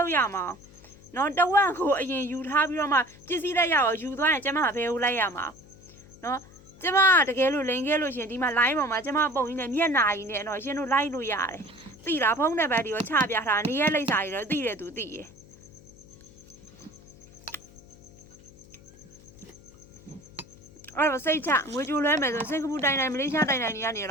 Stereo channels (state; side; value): noise; left; hum, 23 dB below the sound